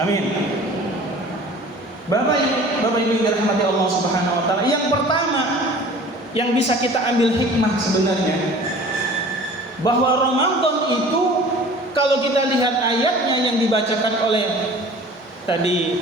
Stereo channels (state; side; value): normal; both; correlation 0.45